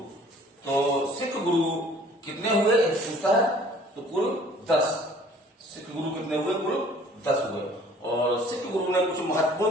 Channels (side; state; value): both; normal; correlation 0.53